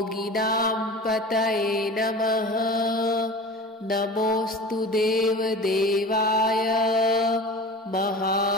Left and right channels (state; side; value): normal; both; correlation 0.35